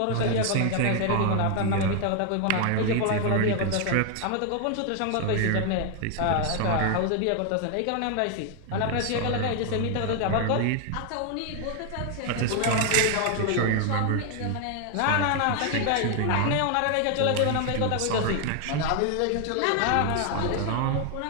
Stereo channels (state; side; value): different; both; correlation 0.00